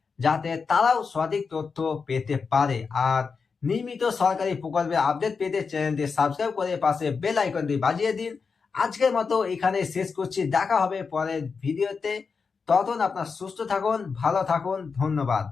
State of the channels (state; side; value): quieter; right; 5.2 dB